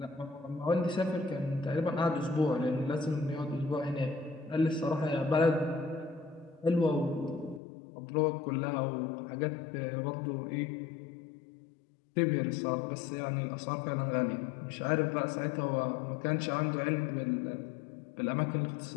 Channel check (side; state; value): right; drops out; at 7.6 s